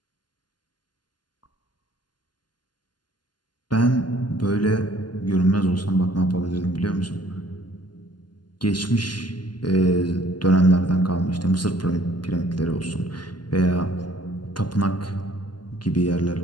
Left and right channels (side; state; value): right; late; 0.71 ms